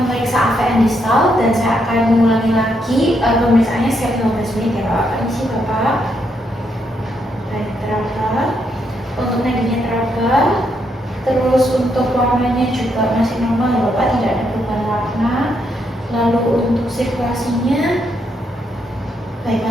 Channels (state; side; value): normal; both; correlation 0.77